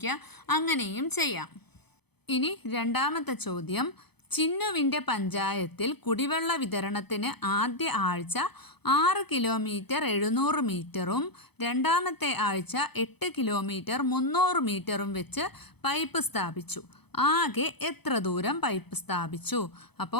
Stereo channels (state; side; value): late; right; 0.98 ms